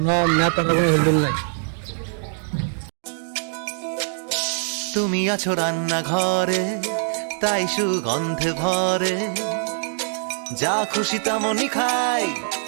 নেতার কোনো হেলদুল নাই। তুমি আছো রান্নাঘরে, তাই সুগন্ধে ভরে, যা খুশি তেমনই খাই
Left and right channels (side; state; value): left; silent; 63 dB below the other